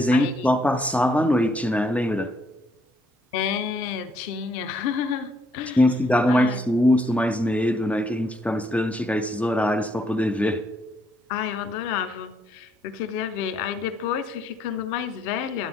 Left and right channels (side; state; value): both; normal; correlation 0.71